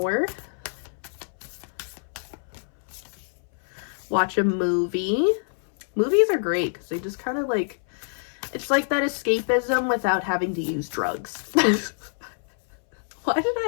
Watch a movie. Movies are great because they just kind of like, it's like that escapism without having to use drugs. Why did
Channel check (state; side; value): silent; right; 61 dB below the other